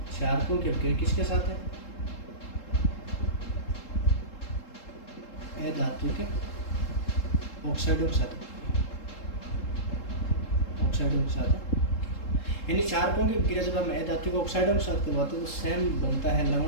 क्षारकों की अभिक्रिया किसके साथ है, अधात्विक ऑक्साइडों के साथ, ऑक्साइडों के साथ। यानी क्षारकों की अभिक्रिया जब हम अधात्विक ऑक्साइडों के साथ करवाते हैं तो सेम बनता है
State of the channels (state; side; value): late; right; 3.7 ms